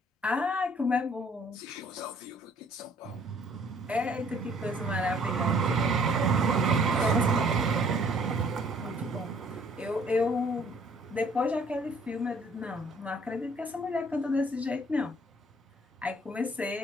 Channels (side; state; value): both; normal; correlation 0.59